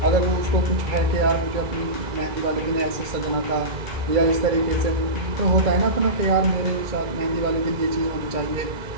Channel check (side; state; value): left; late; 2.0 ms